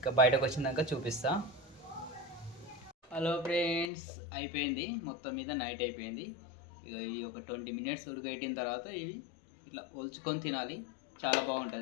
బయటకు వచ్చినాక చూపిస్తా. హలో ఫ్రెండ్స్, అయిపోయింది మొత్తం మీద, నైట్ అయిపోయింది. ఇక ఇవి ఒక 20 మినిట్స్ ఉడకబెట్టిన తర్వాత ఇవి ఇట్లా ఒలుచుకొని తినాలి. చాలా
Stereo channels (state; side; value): drops out; right; at 3.9 s